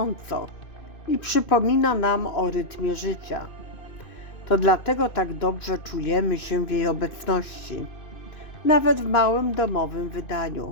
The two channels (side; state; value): right; late; 2.6 ms